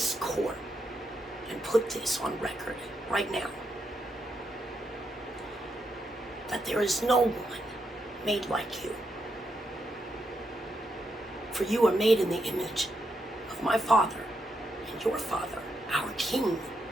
court and put this on record right now, that there is no one made like you. For you are made in the image of my Father and your Father, our King,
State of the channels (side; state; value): both; normal; correlation 0.82